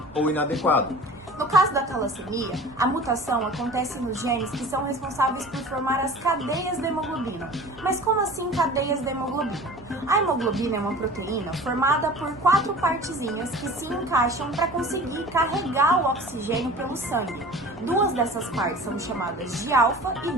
ou inadequado. No caso da talassemia, a mutação acontece nos genes que são responsáveis por formar as cadeias da hemoglobina. Mas como assim cadeias da hemoglobina? A hemoglobina é uma proteína formada por 4 partezinhas que se encaixam para conseguir carregar o oxigênio pelo sangue. 2 dessas partes são chamadas de alfa e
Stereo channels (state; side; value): normal; both; correlation 0.41